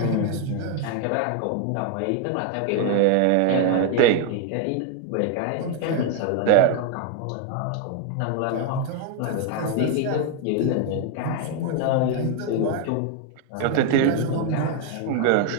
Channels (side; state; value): both; different; correlation 0.01